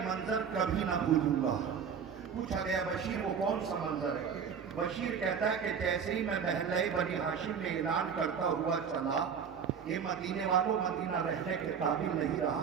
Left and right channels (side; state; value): left; quieter; 6.9 dB